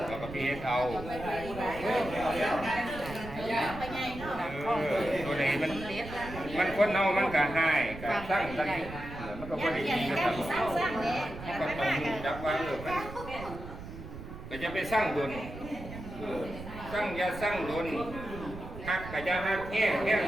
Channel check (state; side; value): noise; right; rumble, 11 dB below the sound